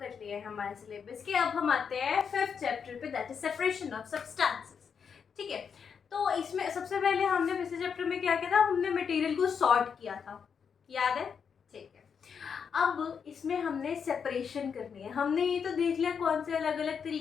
लिए हैं हमारे सिलेबस के। अब हम आते हैं 5th चैप्टर पे, that is separation of substances. ठीक है, तो इसमें सबसे पहले हमने पिछले चैप्टर में क्या किया था, हमने मटेरियल को सॉर्ट किया था, याद है? ठीक है, अब इसमें हमने सेपरेशन करनी है। हमने ये तो देख लिया कौन से अलग अलग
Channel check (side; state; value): right; quieter; 6.7 dB